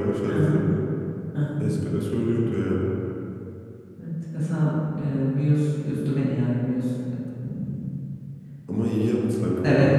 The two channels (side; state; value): both; identical; correlation 1.00